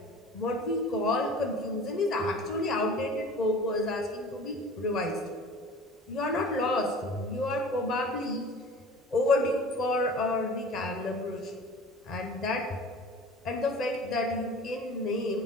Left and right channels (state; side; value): normal; both; correlation 0.41